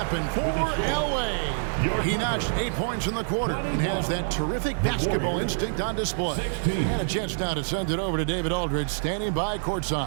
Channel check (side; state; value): left; silent; digital silence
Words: for LA. He notched 8 points in the quarter and has that terrific basketball instinct on display. And a chance now to send it over to David Aldridge, standing by